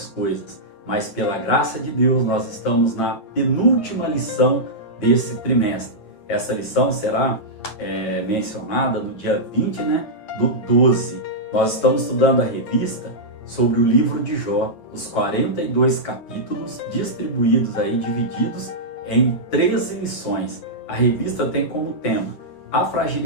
coisas. Mas pela graça de Deus, nós estamos na penúltima lição desse trimestre. Essa lição será mencionada no dia 20, do 12. Nós estamos estudando a revista sobre o livro de Jó, os 42 capítulos distribuídos aí, divididos em 13 lições. A revista tem como tema a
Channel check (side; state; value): right; late; 8.5 ms